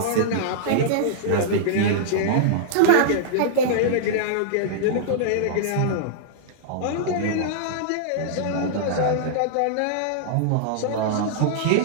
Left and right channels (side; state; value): both; different; correlation -0.01